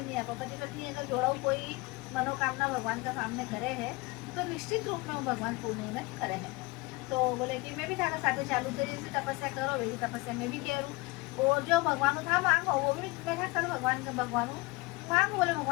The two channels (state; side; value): quieter; right; 24.3 dB